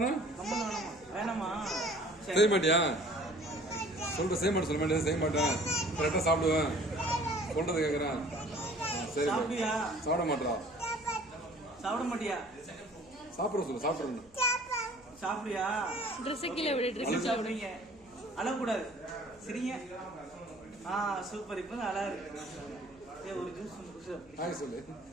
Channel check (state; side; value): noise; left; hum, 26 dB below the sound